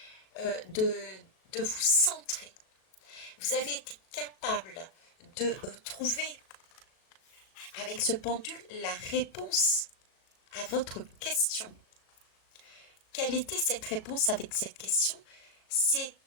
de vous centrer. Vous avez été capable de trouver avec ce pendule la réponse à votre question. Quelle était cette réponse avec cette question? C'est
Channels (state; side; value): late; right; 37 ms